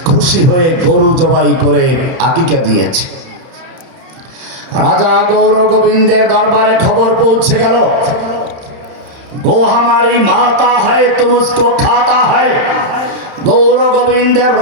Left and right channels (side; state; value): left; late; 31 ms